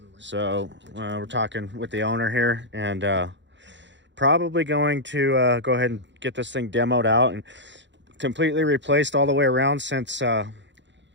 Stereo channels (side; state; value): left; late; 0.53 ms